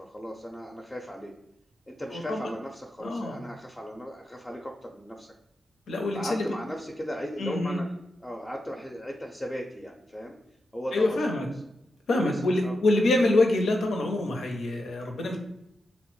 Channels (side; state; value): both; normal; correlation 0.87